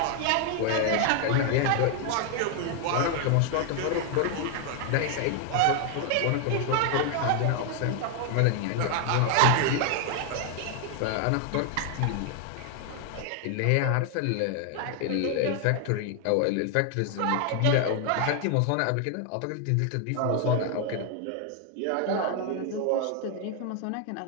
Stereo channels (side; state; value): both; different; correlation 0.00